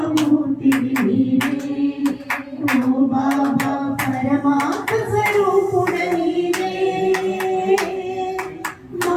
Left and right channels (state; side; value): identical; both; correlation 1.00